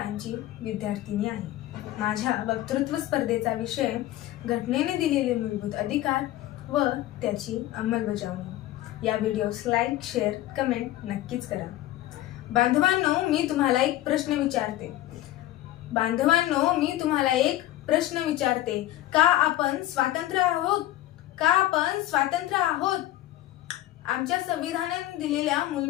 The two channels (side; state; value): right; quieter; 14.8 dB